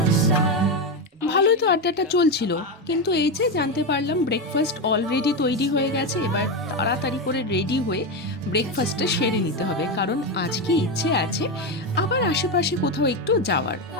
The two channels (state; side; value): normal; both; correlation 0.12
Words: ভালোই তো আড্ডাটা চলছিল, কিন্তু এই যে জানতে পারলাম ব্রেকফাস্ট অলরেডি তৈরি হয়ে গেছে। এবার তাড়াতাড়ি করে রেডি হয়ে ব্রেকফাস্টটা সেরে নিতে হবে, কারণ আজকে ইচ্ছে আছে আবার আশেপাশে কোথাও একটু যাওয়ার।